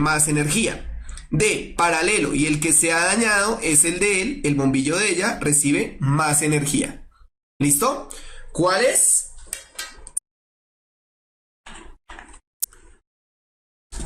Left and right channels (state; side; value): identical; both; correlation 1.00